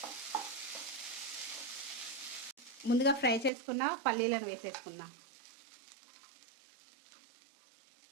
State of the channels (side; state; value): left; drops out; at 3.5 s